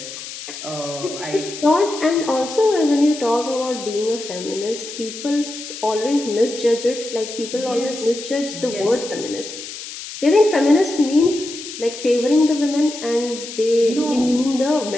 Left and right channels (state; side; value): noise; left; hiss, 11 dB below the sound